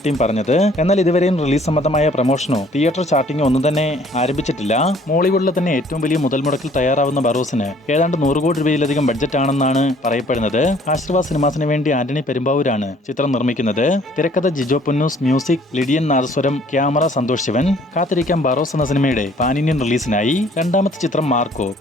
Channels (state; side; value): normal; both; correlation 0.58